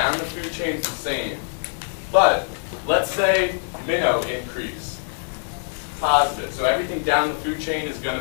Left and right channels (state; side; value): silent; right; digital silence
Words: the food chain is the same. But let's say minnow increase. Positive. So everything down the food chain is going